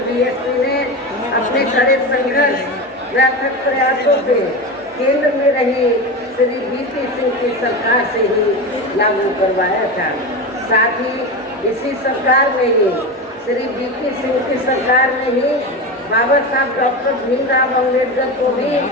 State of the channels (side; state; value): both; normal; correlation 0.22